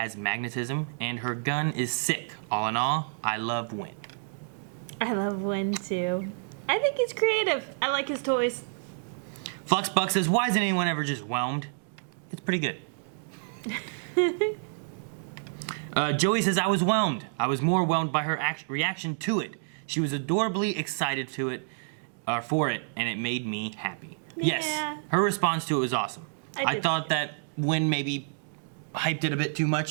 magnetism, and her gun is sick. All in all, I love Win. I love Win too. I think he's creative. I like his toys. Fluxbuck says, why isn't anyone ever just whelmed? It's pretty good. Joey says, I was whelmed. I was more whelmed by her reaction to it. She was adorably excited for it, and it made me happy. Yeah. Yes, her response to it was awesome. I thought that Win maybe hyped it a bit too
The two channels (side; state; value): left; silent; digital silence